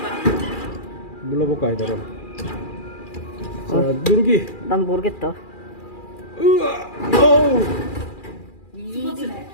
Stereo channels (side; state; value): right; late; 2.4 ms